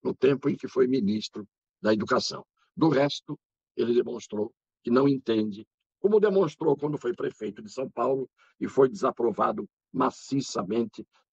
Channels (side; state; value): both; identical; correlation 1.00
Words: no tempo em que foi ministro da Educação. Do resto, ele demonstrou que não entende, como demonstrou quando foi prefeito de São Paulo e foi desaprovado maciçamente,